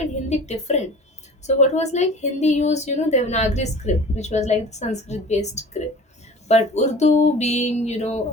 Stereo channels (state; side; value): normal; both; correlation 0.40